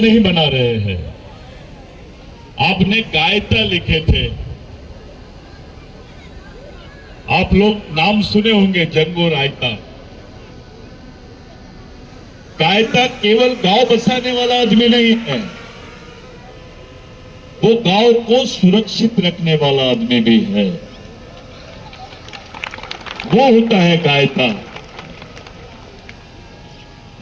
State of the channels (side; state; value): both; identical; correlation 1.00